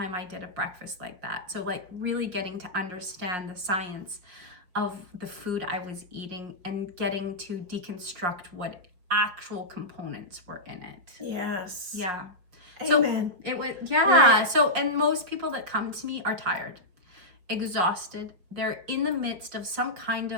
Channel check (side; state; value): left; late; 5.7 ms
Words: I did a breakfast like that. So like really getting to understand the science of the food I was eating and getting to deconstruct what actual components were in it. Yes. Yeah. Amen. So it was, Right. So, and most people that come to me are tired, exhausted. They're in the midst of some kind